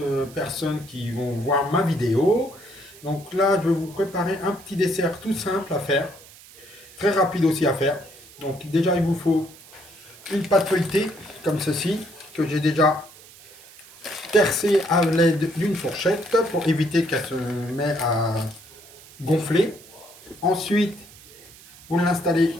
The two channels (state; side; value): noise; right; hiss, 21 dB below the sound